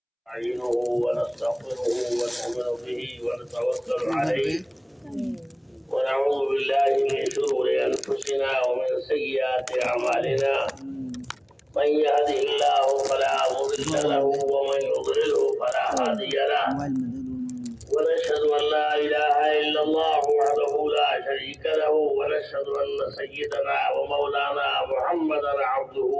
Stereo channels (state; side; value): identical; both; correlation 1.00